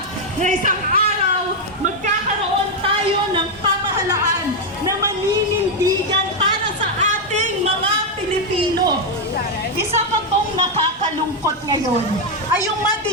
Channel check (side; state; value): both; normal; correlation 0.02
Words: na isang araw magkakaroon tayo ng pamahalaan na maninindigan para sa ating mga Pilipino. Isa pa pong nakakalungkot ngayon ay yung